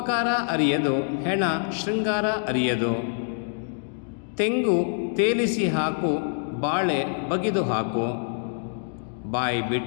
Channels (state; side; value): silent; right; digital silence